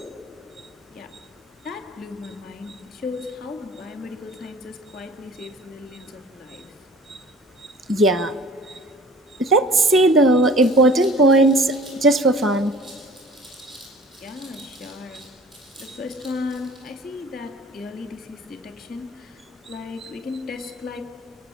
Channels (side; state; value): both; normal; correlation 0.47